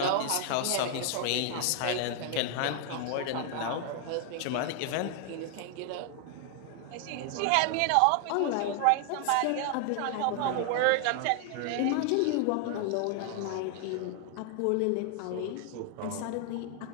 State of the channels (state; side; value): different; both; correlation 0.00